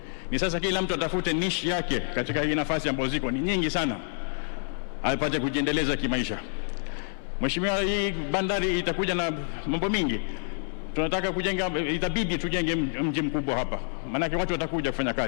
Ni sasa kila mtu atafute niche yake katika hii nafasi ambazo ziko ni nyingi sana, apate kujiendeleza kimaisha. Mheshimiwa, hii bandari itakuja na mambo mingi. Tunataka kujenga, itabidi tujenge mji mkubwa hapa, maana watu watakuja kufanya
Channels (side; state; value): right; silent; 60 dB below the other